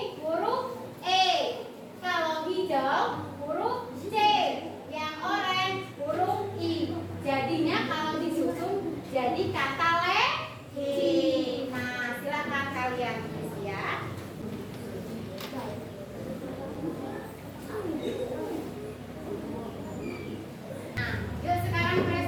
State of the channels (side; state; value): both; identical; correlation 1.00